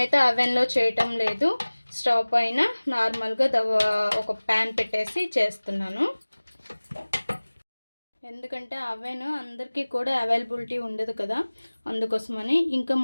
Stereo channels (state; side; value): inverted; both; correlation -1.00